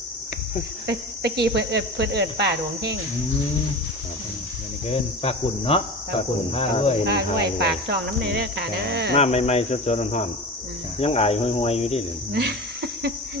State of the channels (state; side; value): normal; both; correlation 0.31